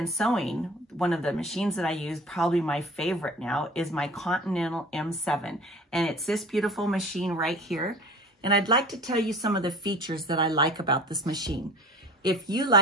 sewing, one of the machines that I use, probably my favorite now, is my Continental M7. And it's this beautiful machine right here. And I'd like to tell you some of the features that I like about this machine. If you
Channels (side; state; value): both; normal; correlation 0.42